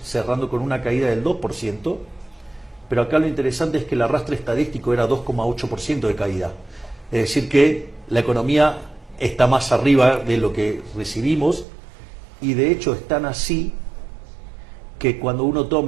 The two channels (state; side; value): drops out; left; at 11.7 s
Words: cerrando con una caída del 2%, pero acá lo interesante es que el arrastre estadístico era 2,8% de caída. Es decir que la economía está más arriba de lo que recibimos, y de hecho es tan así que cuando uno